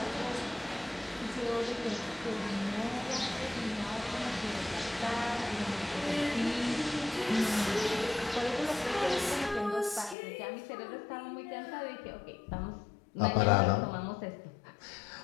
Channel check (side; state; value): right; drops out; at 10.2 s